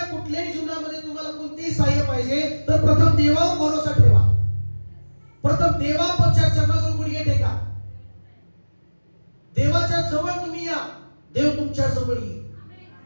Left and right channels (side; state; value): both; inverted; correlation -1.00